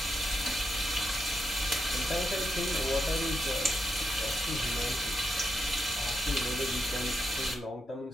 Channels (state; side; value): normal; both; correlation 0.83